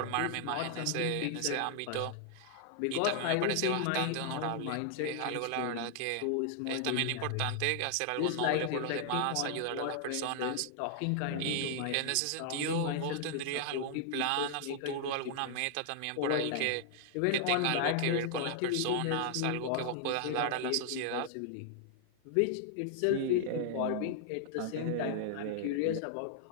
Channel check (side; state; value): both; different; correlation -0.01